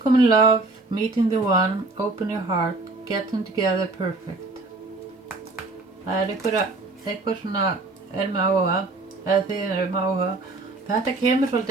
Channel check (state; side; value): quieter; left; 3.3 dB